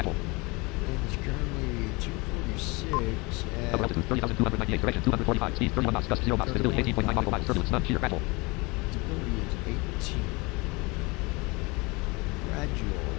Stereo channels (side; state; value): right; quieter; 26.1 dB